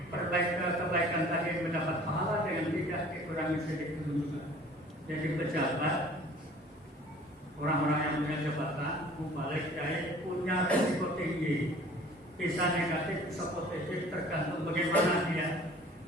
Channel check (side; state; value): both; normal; correlation 0.49